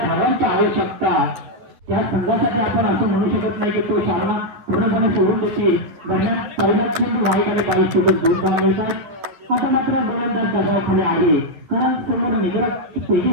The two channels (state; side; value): late; left; 9.9 ms